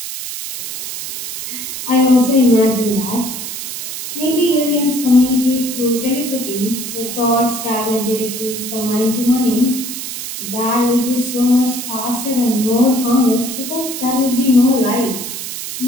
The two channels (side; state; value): right; noise; hiss, 7 dB below the sound